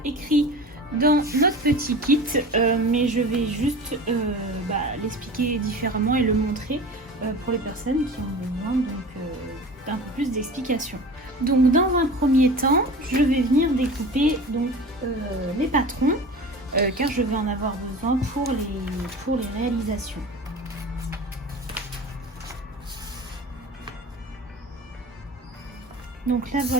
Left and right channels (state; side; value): normal; both; correlation 0.36